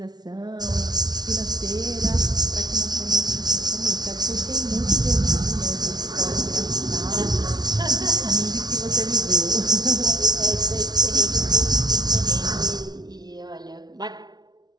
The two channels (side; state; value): left; late; 0.19 ms